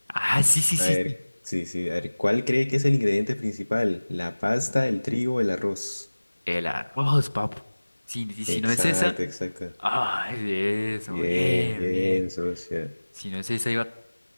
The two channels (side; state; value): both; inverted; correlation -1.00